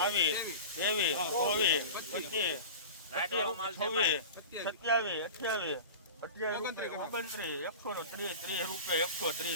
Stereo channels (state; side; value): inverted; both; correlation -0.34